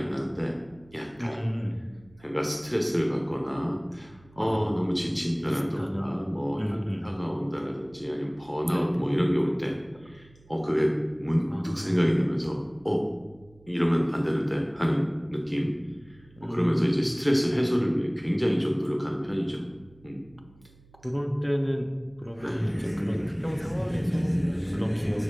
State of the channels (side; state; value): right; noise; hum, 27 dB below the sound